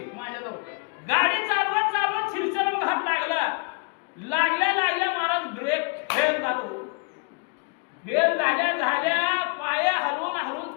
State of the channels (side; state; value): right; quieter; 35.2 dB